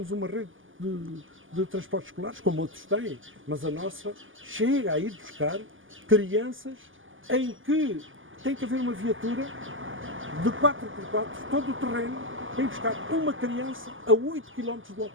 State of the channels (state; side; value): late; left; 0.58 ms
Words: uma rede de transportes escolares, como outros têm, mas a nossa chega a ir buscar crianças em que tem que haver uma viatura de 4x4, todo o terreno, para ir buscar uma criança a 8 km do